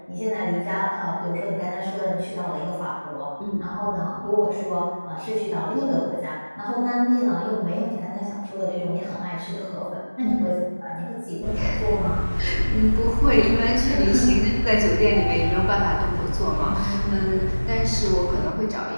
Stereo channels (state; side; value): inverted; both; correlation -1.00